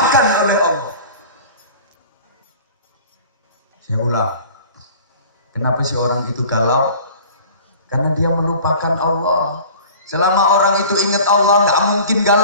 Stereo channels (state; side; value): inverted; both; correlation -0.43